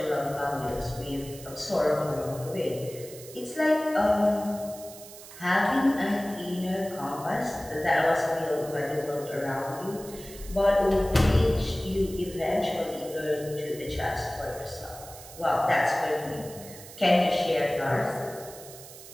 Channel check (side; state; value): right; noise; hiss, 16 dB below the sound